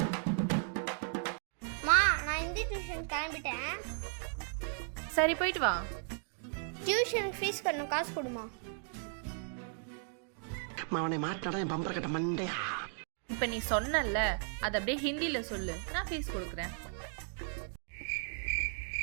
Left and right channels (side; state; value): left; silent; 54 dB below the other